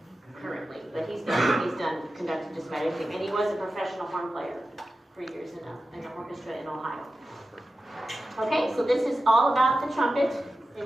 currently, but he's done conducted just about everything. And he was a professional horn player for years in an orchestra in Ohio. Okay, so this is all about the trumpet, and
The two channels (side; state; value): both; normal; correlation 0.93